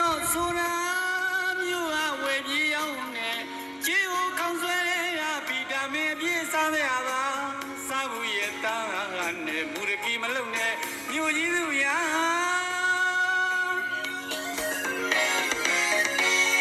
ော့ဆိုတာ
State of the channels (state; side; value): identical; both; correlation 1.00